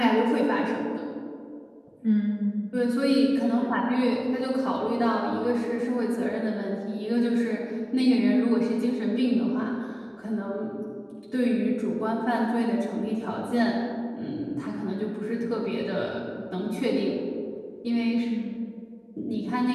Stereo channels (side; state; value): both; identical; correlation 1.00